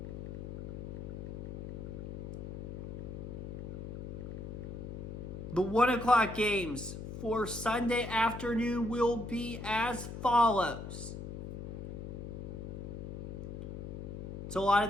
the 1 o'clock games for Sunday afternoon will be as follows. It's a lot of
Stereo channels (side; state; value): left; noise; hum, 8 dB below the sound